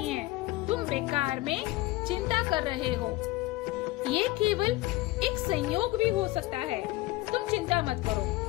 है, तुम बेकार में चिंता कर रहे हो। ये केवल एक संयोग भी हो सकता है, तुम चिंता मत करो।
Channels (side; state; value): right; quieter; 19.1 dB